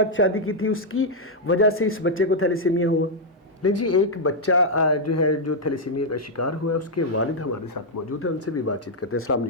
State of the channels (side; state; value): both; normal; correlation -0.03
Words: शादी की थी, उसकी वजह से इस बच्चे को थैलेसीमिया हुआ। लेकिन जी एक बच्चा जो है जो थैलेसीमिया का शिकार हुआ है, उसके वालिद हमारे साथ मौजूद है, उनसे भी बातचीत करते हैं। अस्सलाम